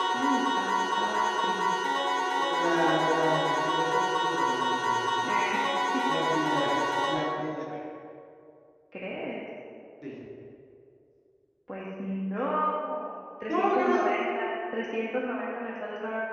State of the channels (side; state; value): both; identical; correlation 1.00